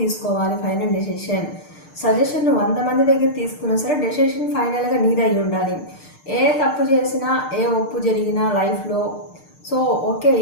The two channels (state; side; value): late; right; 6.6 ms